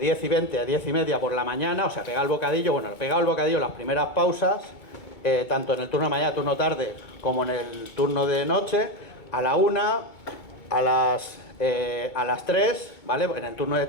10 y 20 a 10 y media por la mañana, o sea, pegado el bocadillo. Bueno, pegado el bocadillo, las primeras pausas, tanto en el turno de mañana, turno tarde, como en el turno de noche, a la 1, a las 3, ¿vale? En el turno de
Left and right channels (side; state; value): right; late; 2.2 ms